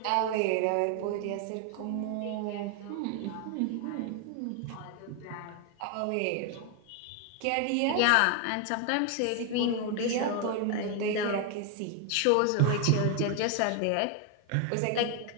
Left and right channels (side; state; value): both; different; correlation 0.01